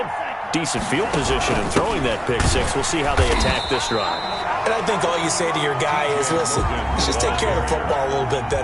decent field position in throwing that pick six. We'll see how they attack this drive. And I think all you say to your guy is, listen, let's just take care of the football a little bit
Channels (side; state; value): both; identical; correlation 1.00